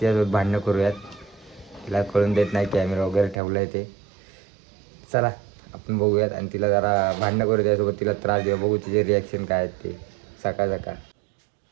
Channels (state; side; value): drops out; left; at 3.4 s